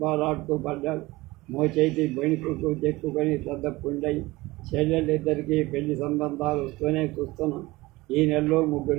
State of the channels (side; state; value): left; quieter; 20.3 dB